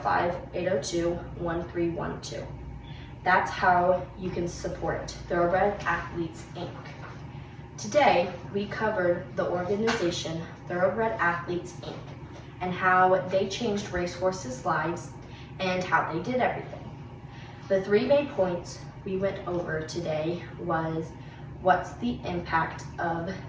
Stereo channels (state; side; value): identical; both; correlation 1.00